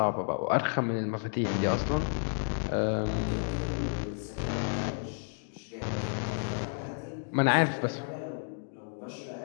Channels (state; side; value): silent; right; digital silence